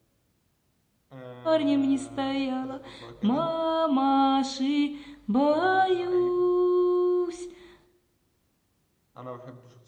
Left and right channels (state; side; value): identical; both; correlation 1.00